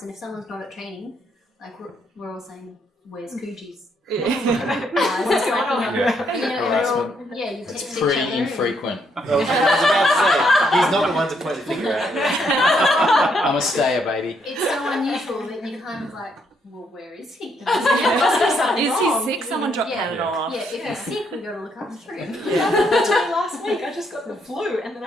And if someone's not at training, like we're all saying, "Where's Cujes?" What's going on? You you It's text each pretty other. infrequent. I was about to say, he's not the one to point the finger at. I'm a stayer, baby. It's so unusual that you kind of like, well, where is he? Is he sick? Someone dropped Panadol off. Yeah, if he's sick, we got to look after him. That's why last week I just got the flu and then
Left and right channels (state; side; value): normal; both; correlation 0.74